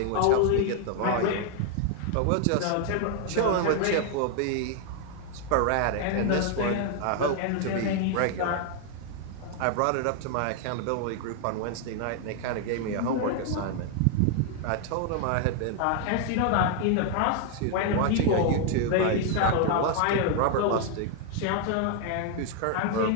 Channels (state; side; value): different; both; correlation 0.00